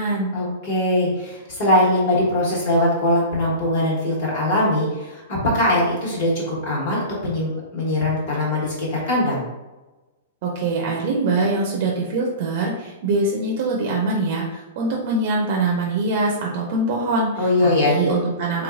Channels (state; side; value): inverted; both; correlation -0.32